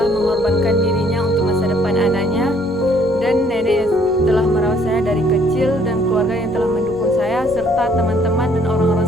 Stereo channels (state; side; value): normal; both; correlation 0.63